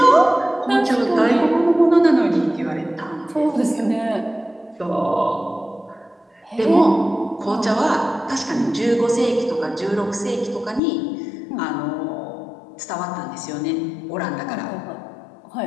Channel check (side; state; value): right; drops out; at 10.8 s